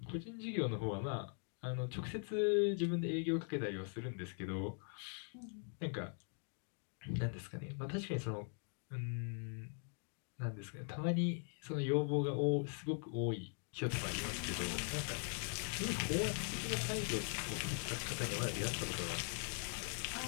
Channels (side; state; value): right; silent; 50 dB below the other